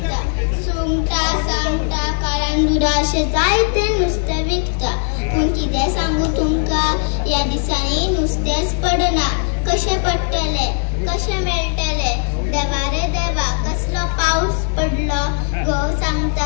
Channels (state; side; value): silent; right; digital silence